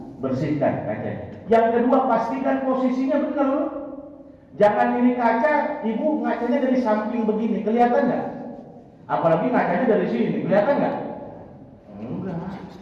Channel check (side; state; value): both; identical; correlation 1.00